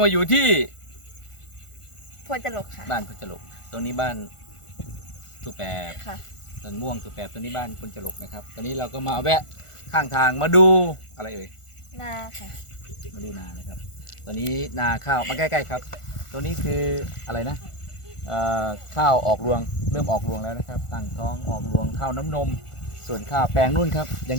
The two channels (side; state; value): right; late; 1.4 ms